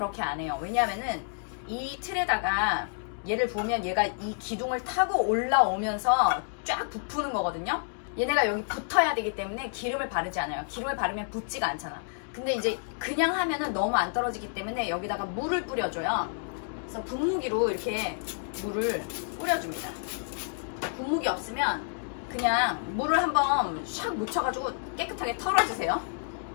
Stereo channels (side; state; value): right; silent; digital silence